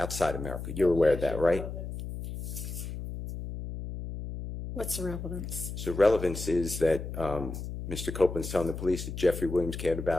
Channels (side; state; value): left; noise; hum, 7 dB below the sound